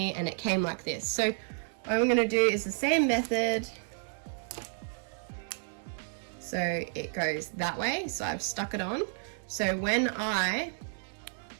and it came like this. So what I'm going to do is the same method. So it goes that way. So I've stuck it on. So when I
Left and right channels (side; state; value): left; silent; digital silence